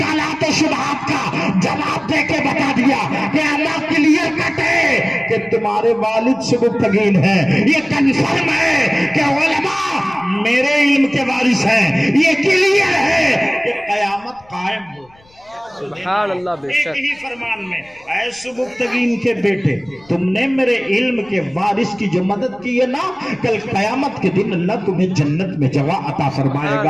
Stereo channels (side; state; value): left; noise; rumble, 30 dB below the sound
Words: و شبہات کا جواب دے کے بتا دیا کہ اللہ کلیئر کٹ ہے کہ تمہارے والد سبکتگین ہیں, یہ کنفرم ہے کہ علماء میرے علم کے وارث ہیں, یہ کلیئر ہے کہ قیامت قائم ہو. سبحان اللہ بے ایک شک ہی فرمان میں، اے سبکتگین کے بیٹے، تم نے میرے علم کے وارث کی جو مدد کی ہے نا، کل قیامت کے دن اللہ تمہیں جنت میں جگہ عطا فرمائے